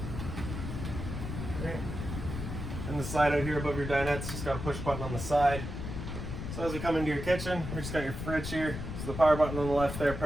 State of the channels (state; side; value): noise; left; rumble, 6 dB below the sound